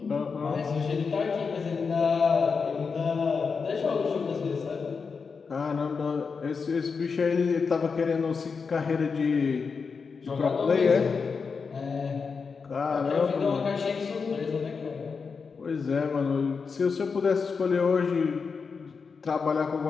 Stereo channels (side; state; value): right; quieter; 5.3 dB